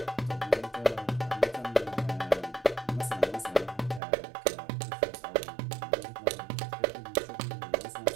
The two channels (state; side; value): drops out; left; at 4.0 s